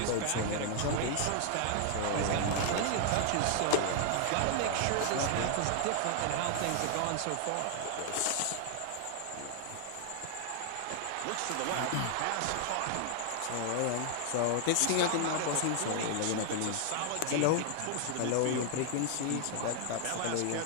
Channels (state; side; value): different; both; correlation 0.00